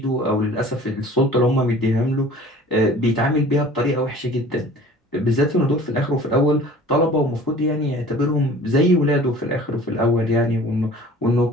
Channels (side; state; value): both; normal; correlation 0.46